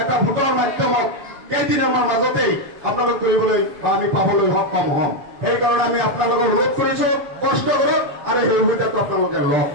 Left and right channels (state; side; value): late; left; 7.1 ms